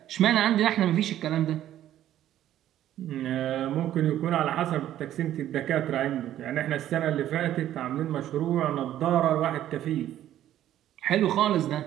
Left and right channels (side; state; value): left; quieter; 12.2 dB